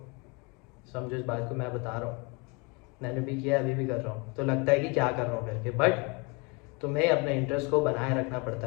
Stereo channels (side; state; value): right; quieter; 29.5 dB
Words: समझो इस बात को मैं बता रहा हूँ, मैंने भी किया, अभी भी कर रहा हूँ, तो लगता है कि क्या कर रहा हूँ करके, बट तुम्हें अपने इंटरेस्ट को बनाए रखना